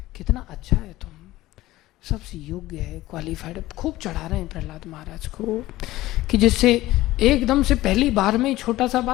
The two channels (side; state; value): right; quieter; 16.9 dB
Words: कितना अच्छा है तुम, सबसे योग्य है, क्वालिफाइड है। खूब चढ़ा रहे हैं प्रहलाद महाराज को कि जिससे एकदम से पहली बार में ही छोटा सा